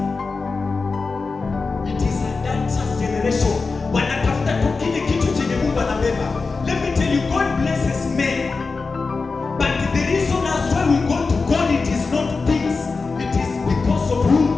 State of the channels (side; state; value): right; quieter; 4.3 dB